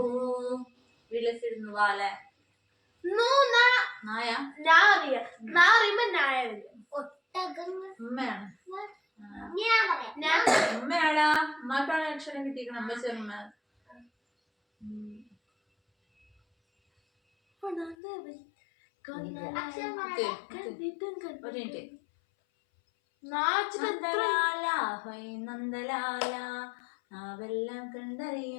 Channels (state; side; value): drops out; right; at 17.9 s